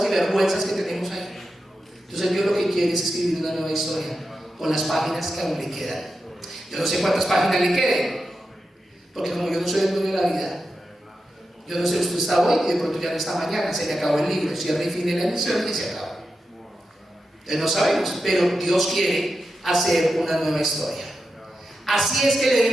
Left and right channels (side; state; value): both; normal; correlation 0.89